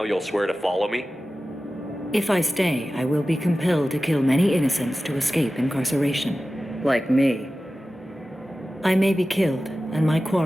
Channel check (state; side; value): normal; both; correlation 0.95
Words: you'll swear to follow me? If I stay, I will be compelled to kill many innocents to escape incarceration. Like me. I may be killed, and my